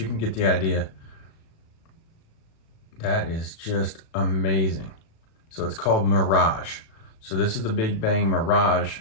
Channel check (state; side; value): late; right; 36 ms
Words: can get the idea. That is just amazing. So it's called Mirage. So this is the Big Bang Mirage